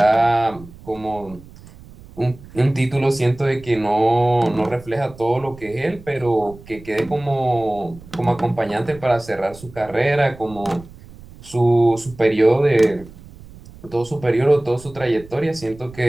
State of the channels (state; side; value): noise; right; rumble, 20 dB below the sound